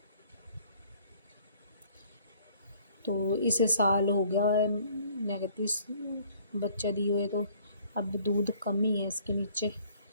तो इसे साल हो गया है, मैं कहती बच्चा दिए हुए, तो अब दूध कम ही है इसके नीचे।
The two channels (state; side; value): inverted; both; correlation -0.58